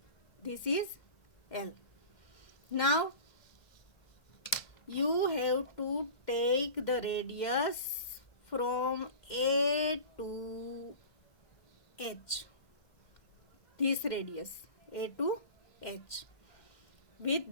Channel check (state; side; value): late; right; 2.1 ms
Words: This is L. Now you have to take the radius from A to H. This radius A to H.